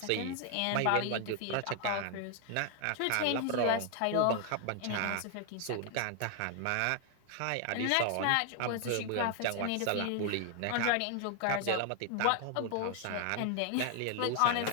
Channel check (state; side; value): different; both; correlation 0.00